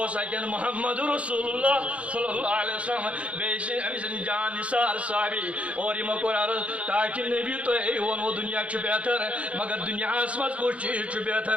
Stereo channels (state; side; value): late; left; 0.063 ms